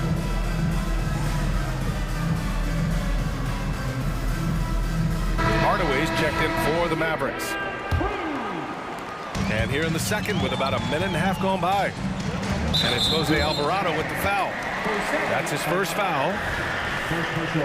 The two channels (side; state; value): both; identical; correlation 1.00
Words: Hardaway's checked in for the Mavericks. And here in the second with about a minute and a half gone by. And it's Jose Alvarado with the foul. That's his first foul. First personal